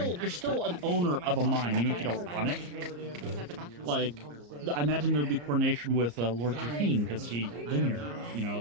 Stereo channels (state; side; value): late; left; 34 ms